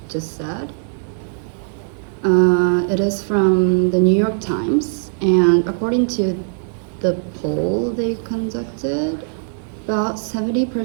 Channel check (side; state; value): left; silent; digital silence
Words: just said. It is from the New York Times, and according to the poll they conducted, about